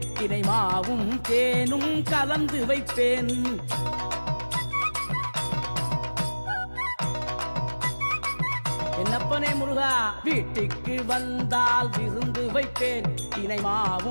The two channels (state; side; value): inverted; both; correlation -1.00